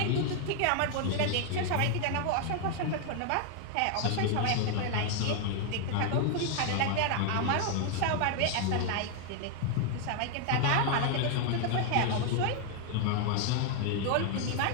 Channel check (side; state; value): both; different; correlation 0.00